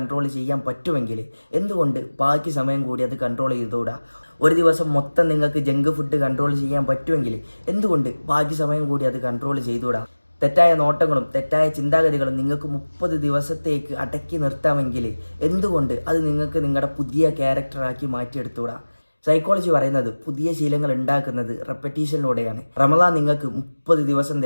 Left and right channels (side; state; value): both; inverted; correlation -1.00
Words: ചെയ്യാൻ പറ്റുമെങ്കിൽ എന്തുകൊണ്ട് ബാക്കി സമയം കൂടി അത് കൺട്രോൾ ചെയ്തുകൂടാ? ഒരു ദിവസം മൊത്തം നിങ്ങൾക്ക് ജങ്ക് ഫുഡ് കൺട്രോൾ ചെയ്യാൻ പറ്റുമെങ്കിൽ എന്തുകൊണ്ട് ബാക്കി സമയം കൂടി അത് കൺട്രോൾ ചെയ്തുകൂടാ? തെറ്റായ നോട്ടങ്ങളും തെറ്റായ ചിന്താഗതികളും നിങ്ങൾക്ക് 30 ദിവസത്തേക്ക് അടക്കി നിർത്താമെങ്കിൽ എന്തുകൊണ്ട് അത് നിങ്ങൾക്ക് നിങ്ങളുടെ പുതിയ ക്യാരക്ടറാക്കി മാറ്റിയെടുത്തുകൂടാ? സൈക്കോളജി പറയുന്നത് പുതിയ ശീലങ്ങൾ ഉണ്ടാക്കുന്നത് റെപ്പറ്റീഷനിലൂടെയാണ്. റമദാൻ നിങ്ങൾക്ക് 30 ദിവസം